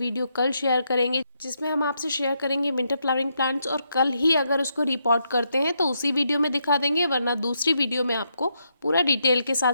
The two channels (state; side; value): inverted; both; correlation -0.79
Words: कल शेयर करेंगे, जिसमें हम आपसे शेयर करेंगे विंटर फ्लावरिंग प्लांट्स। और कल ही अगर उसको रिपोर्ट करते हैं तो उसी वीडियो में दिखा देंगे, वरना दूसरी वीडियो में आपको पूरा डिटेल के